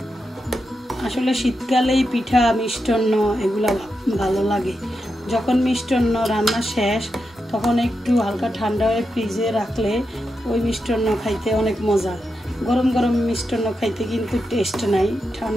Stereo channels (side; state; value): both; normal; correlation 0.87